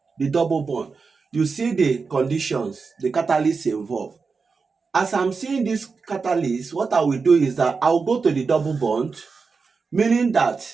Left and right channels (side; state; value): left; quieter; 4.8 dB